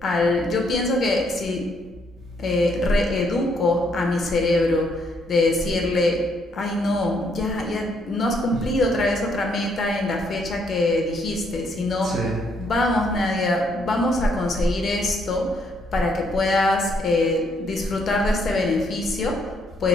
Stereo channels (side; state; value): both; normal; correlation 0.71